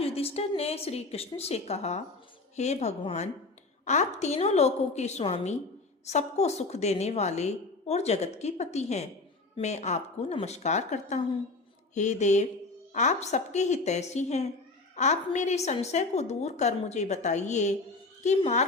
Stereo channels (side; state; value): right; quieter; 3.4 dB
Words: युधिष्ठिर ने श्री कृष्ण से कहा, हे भगवान, आप तीनों लोकों के स्वामी, सबको सुख देने वाले और जगत के पति हैं। मैं आपको नमस्कार करता हूँ। हे देव, आप सबके हितैषी हैं। आप मेरे संशय को दूर कर मुझे बताइए कि